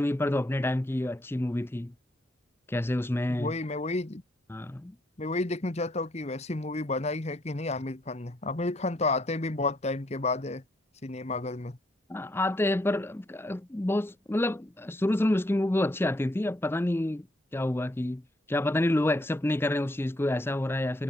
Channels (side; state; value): both; normal; correlation 0.73